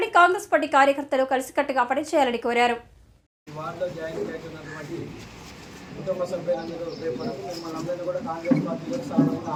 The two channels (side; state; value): both; identical; correlation 1.00